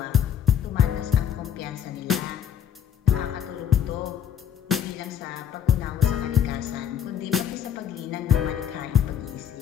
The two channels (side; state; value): right; quieter; 9.1 dB